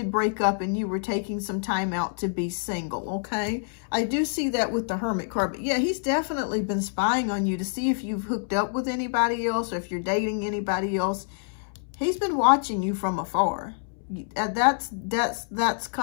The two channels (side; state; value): right; silent; 60 dB below the other